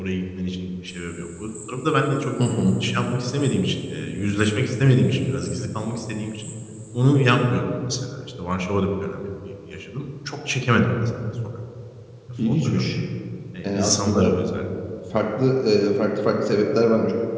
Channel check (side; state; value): both; identical; correlation 1.00